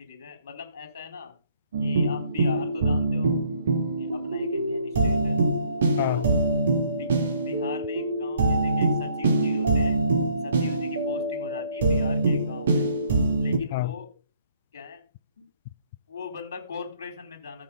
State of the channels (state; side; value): inverted; both; correlation -0.63